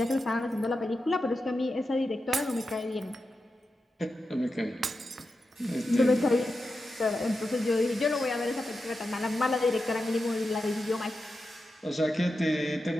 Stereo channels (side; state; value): both; normal; correlation 0.90